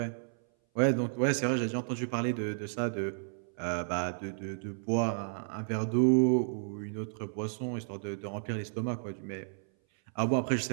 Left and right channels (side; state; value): left; silent; 56 dB below the other